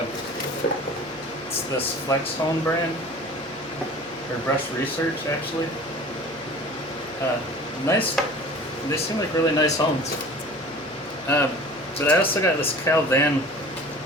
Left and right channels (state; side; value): noise; left; hum, 25 dB below the sound